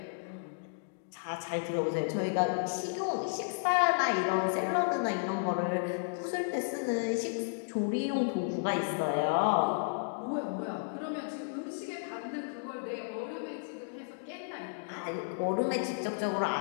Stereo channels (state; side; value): silent; right; digital silence